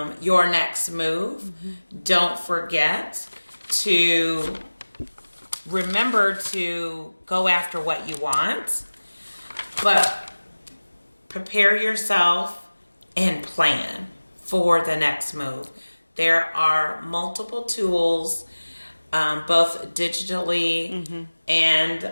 your next move, don't forget to remember to go after what you want, but prepare yourself and plan for the next move. There are multiple tools, both digitally and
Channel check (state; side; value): inverted; both; correlation -1.00